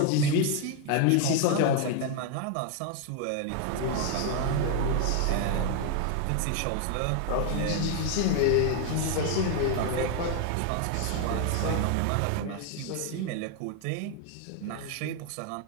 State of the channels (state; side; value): different; both; correlation 0.01